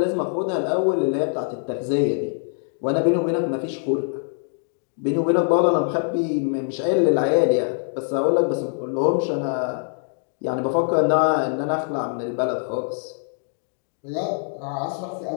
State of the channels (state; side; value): silent; right; 63 dB below the other